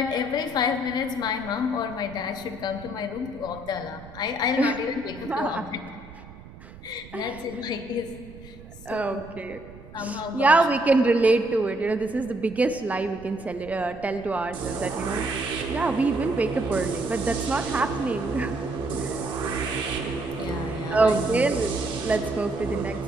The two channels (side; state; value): right; noise; rumble, 18 dB below the sound